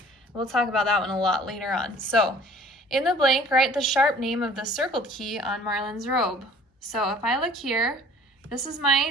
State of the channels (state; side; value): normal; both; correlation 0.52